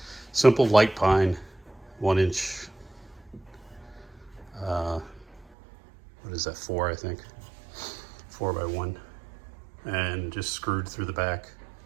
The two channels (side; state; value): left; drops out; at 5.5 s